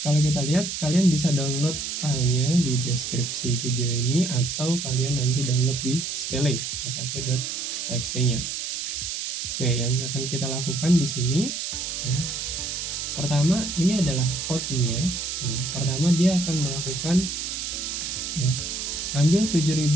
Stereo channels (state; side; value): noise; right; hiss, 4 dB below the sound